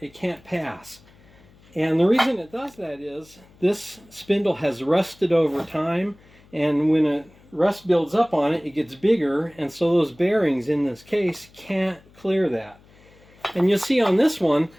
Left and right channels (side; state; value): left; noise; hum, 27 dB below the sound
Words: It can't pass. And the reason it does that is this spindle has rusted over time, and when rust builds up on it, it gets bigger, and so those bearings in this case can't clear that. And you'll see on this one,